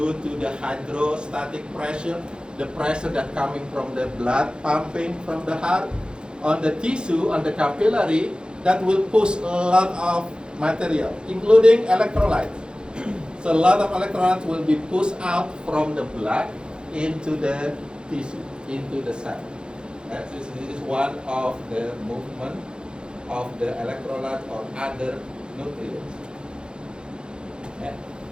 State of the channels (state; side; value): late; left; 0.050 ms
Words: to the hydrostatic pressure, the pressure that coming from the blood pumping from the heart on the tissue, on the capillary, that will push a lot of material, including electrolytes. So a lot of electrolytes will be pushed out from the blood into the tissue, into the cell. This is one of the movement of the electrolyte or other nutrients,